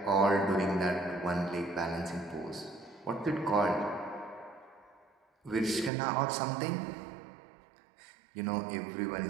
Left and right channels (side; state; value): left; drops out; at 5.9 s